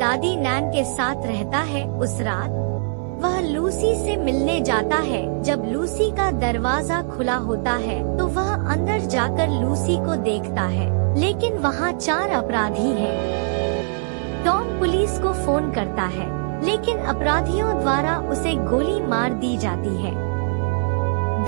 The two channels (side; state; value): left; silent; digital silence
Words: नैन के साथ रहता है। उस रात वह लूसी से मिलने जाता है। जब लूसी का दरवाजा खुला होता है तो वह अंदर जाकर लूसी को देखता है, लेकिन वहाँ 4 अपराधी हैं। टॉम पुलिस को फोन करता है, लेकिन अपराधियों द्वारा उसे गोली मार दी जाती है।